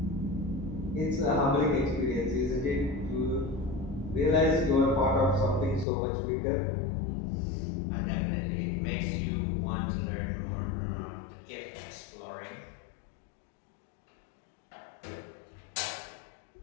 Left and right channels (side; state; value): right; drops out; at 5.9 s